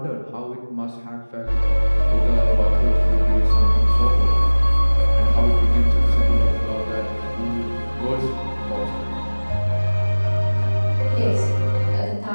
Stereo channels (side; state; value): both; inverted; correlation -1.00